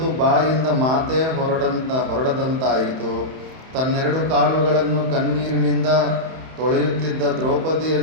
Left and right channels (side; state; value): left; late; 31 ms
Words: ಬಾಯಿಂದ ಮಾತೇ ಹೊರಡದಂತಾಯಿತು. ತನ್ನೆರಡು ಕಾಲುಗಳನ್ನು ಕಣ್ಣೀರಿನಿಂದ ತೊಳೆಯುತ್ತಿದ್ದ